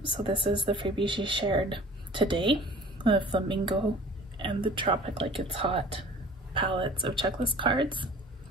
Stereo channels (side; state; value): both; normal; correlation 0.46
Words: So this is the freebie she shared today, the Flamingo and the Tropic Like It's Hot palettes of checklist cards.